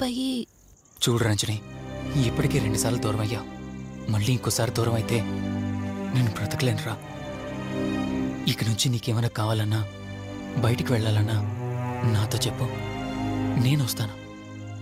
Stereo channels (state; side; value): identical; both; correlation 1.00